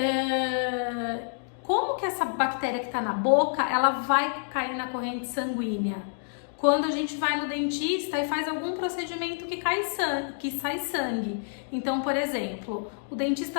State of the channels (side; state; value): right; silent; digital silence